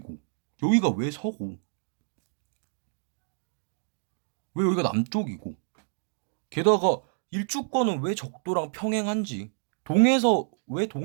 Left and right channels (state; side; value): silent; left; digital silence